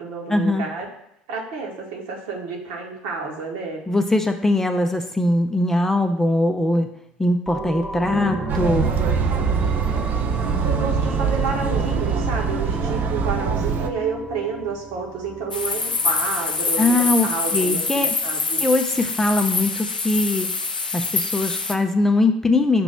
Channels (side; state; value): both; normal; correlation 0.60